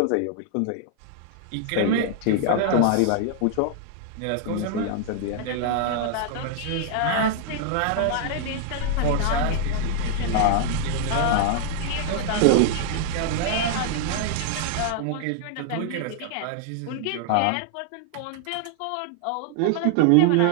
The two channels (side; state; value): both; different; correlation 0.00